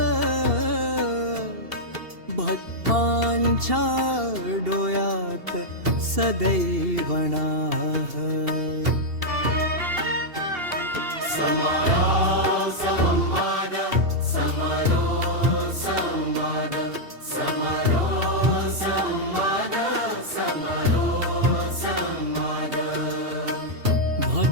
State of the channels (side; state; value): left; late; 2.8 ms